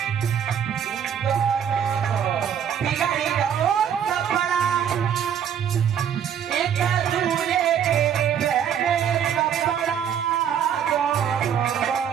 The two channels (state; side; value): quieter; left; 8.6 dB